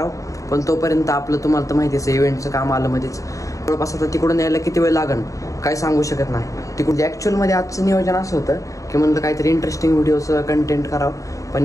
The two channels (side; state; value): right; late; 0.16 ms